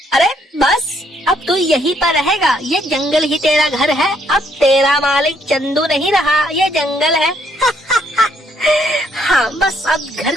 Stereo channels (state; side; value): normal; both; correlation 0.70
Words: अरे बस अब तू यहीं पर रहेगा, ये जंगल ही तेरा घर है, अब तेरा मालिक चंदू नहीं रहा, ये जंगल है। हाँ बस अब घर